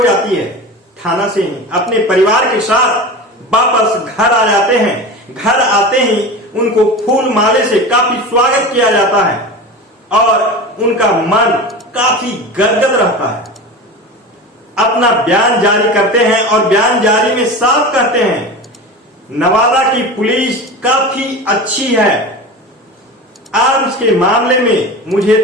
जाती है। थाना से ही अपने परिवार के साथ वापस घर आ जाते हैं। घर आते ही उनको फूल माले से काफी स्वागत किया जाता है और उनका मन काफी गदगद रहता है। अपना बयान जारी करते हैं और बयान जारी में साफ कहते हैं, नवादा की पुलिस काफी अच्छी है। आर्म्स के मामले में मुझे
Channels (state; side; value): normal; both; correlation 0.30